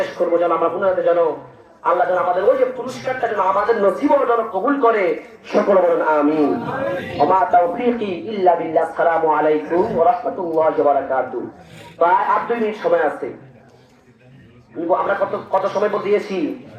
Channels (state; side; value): identical; both; correlation 1.00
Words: করবো, যেন আমরা গুনাহতে যেন আল্লাহ যেন আমাদের ওই যে পুরস্কারটা যেন আমাদের নসিবও যেন কবুল করে, সকলে বলুন আমিন। ওমা তাওফীকি ইল্লা বিল্লাহ। আসসালামু আলাইকুম ওয়া রাহমাতুল্লাহি ওয়া বারাকাতুহু। প্রায় 8 মিনিট সময় আছে। আমরা কত সময় দিয়েছি?